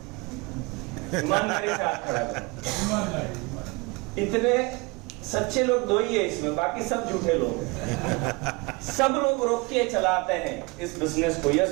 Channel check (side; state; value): left; quieter; 27.0 dB